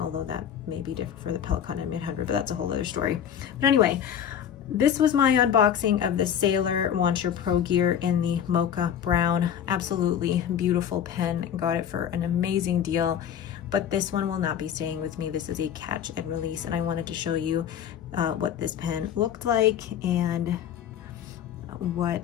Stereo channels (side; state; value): right; quieter; 9.1 dB